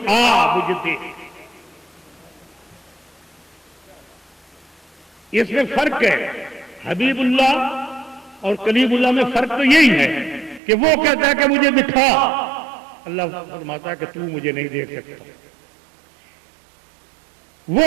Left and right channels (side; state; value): left; drops out; at 10.6 s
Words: آ مجھے دیکھ، اس میں فرق ہے۔ حبیب اللہ اور کلیم اللہ میں فرق تو یہی ہے کہ وہ کہتا ہے کہ مجھے دکھا، اللہ فرماتا ہے کہ تو مجھے نہیں دیکھ سکتا۔